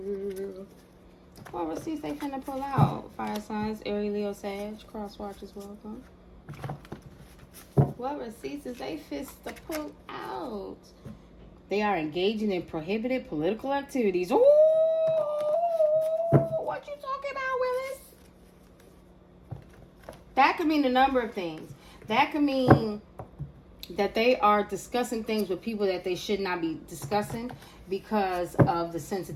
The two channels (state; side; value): identical; both; correlation 1.00